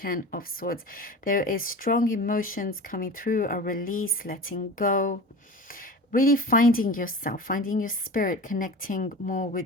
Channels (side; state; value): both; normal; correlation 0.33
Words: of Swords. There is strong emotions coming through, a release, letting go, really finding yourself, finding your spirit, connecting more